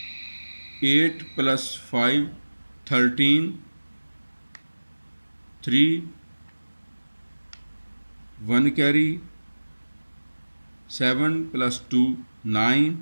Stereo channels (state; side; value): inverted; both; correlation -1.00